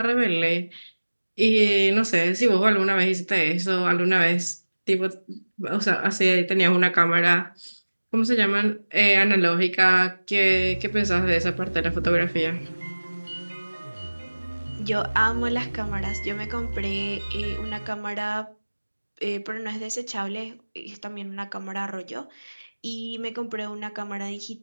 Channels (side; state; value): both; inverted; correlation -1.00